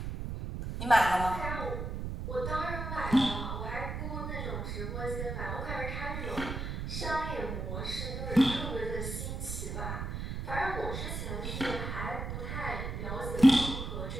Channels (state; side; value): noise; right; rumble, 4 dB below the sound